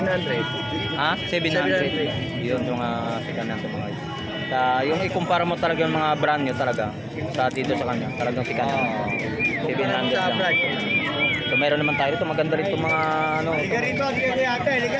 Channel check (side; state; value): both; identical; correlation 1.00